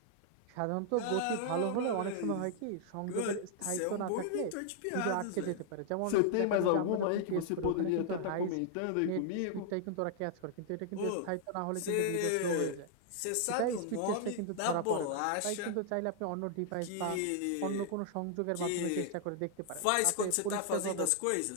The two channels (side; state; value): both; different; correlation 0.00